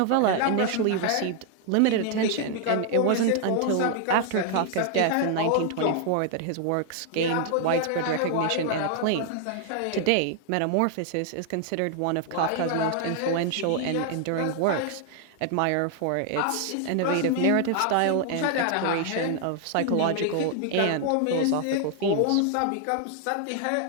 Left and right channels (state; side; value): different; both; correlation 0.00